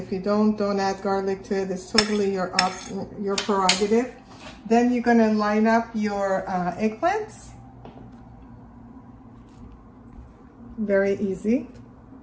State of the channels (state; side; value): identical; both; correlation 1.00